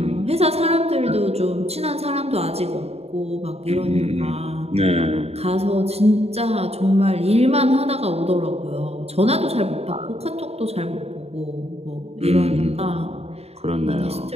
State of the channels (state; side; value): late; left; 0.30 ms